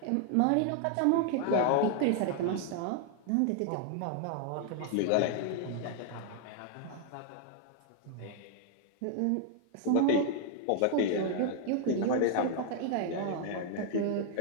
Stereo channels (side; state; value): both; different; correlation 0.00